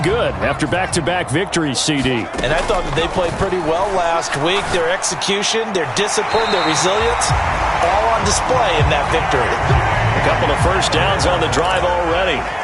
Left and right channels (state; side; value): identical; both; correlation 1.00